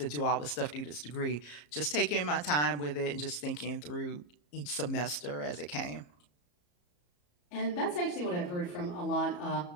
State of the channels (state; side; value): late; right; 34 ms